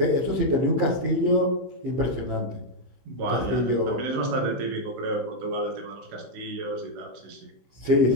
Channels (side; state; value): left; late; 15 ms